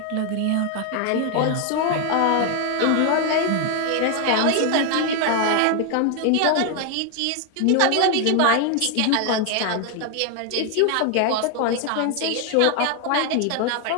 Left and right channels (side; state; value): both; different; correlation 0.01